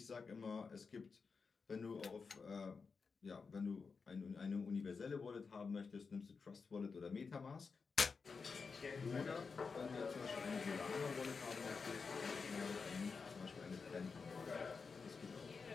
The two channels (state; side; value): quieter; right; 5.0 dB